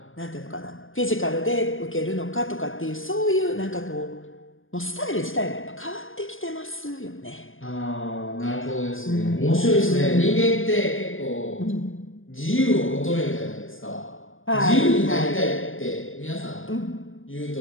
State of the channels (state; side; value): late; right; 0.59 ms